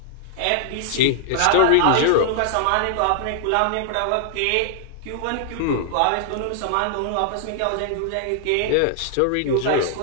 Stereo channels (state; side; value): different; both; correlation -0.01